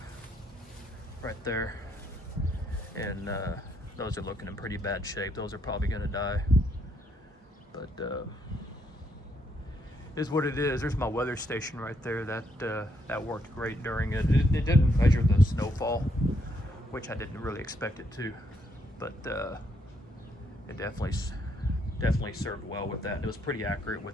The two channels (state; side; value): normal; both; correlation 0.74